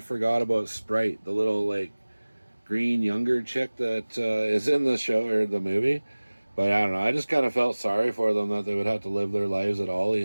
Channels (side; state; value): both; inverted; correlation -1.00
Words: about Sprite, the little, like, green younger chick that is in the show or the movie. But I don't know. I just kind of felt sorry for them that they would have to live their lives at